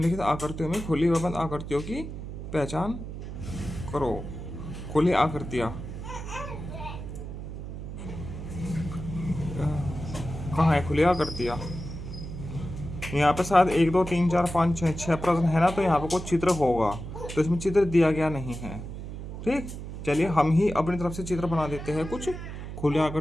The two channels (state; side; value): noise; right; hum, 9 dB below the sound